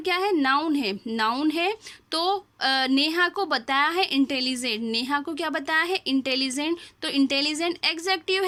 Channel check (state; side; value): identical; both; correlation 1.00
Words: क्या है? नाउन है। नाउन है तो नेहा को बताया है इंटेलिजेंट। नेहा को क्या बताया है? इंटेलिजेंट। तो इंटेलिजेंट एडजेक्टिव